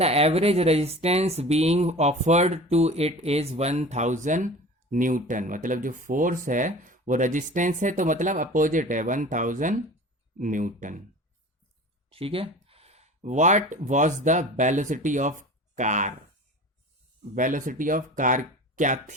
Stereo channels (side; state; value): both; normal; correlation 0.38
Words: average resistance being offered to it is 1000 newton, मतलब जो फोर्स है वो रेजिस्टेंस है, तो मतलब अपोजिट है 1000 न्यूटन, ठीक है। What was the velocity of car, velocity of car क्या